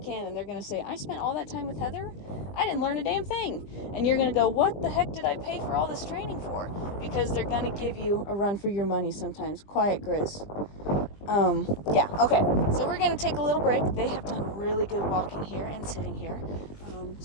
And they're going to say, I spent all that time with Heather. I didn't learn a damn thing. And you're going to go, what the heck did I pay for all this training for? Because they're going to give you a run for your money sometimes. Quiet, Grizz. Yeah, okay. So we're going to take a little break. They have done really good walking here and sitting here.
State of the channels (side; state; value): right; late; 20 ms